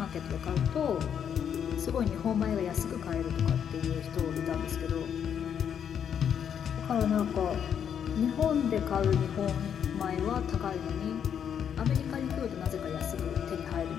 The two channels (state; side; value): quieter; right; 8.3 dB